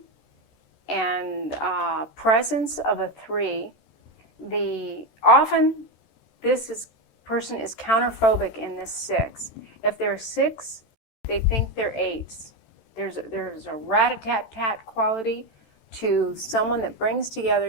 and presence of a 3. Often this person is counterphobic in this 6. If they're 6, they think they're 8s. There's a rat-a-tat-tat quality to someone that brings together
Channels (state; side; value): late; right; 13 ms